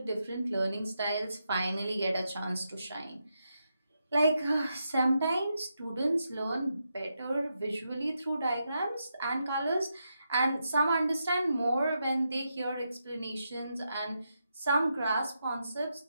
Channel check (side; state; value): both; inverted; correlation -0.84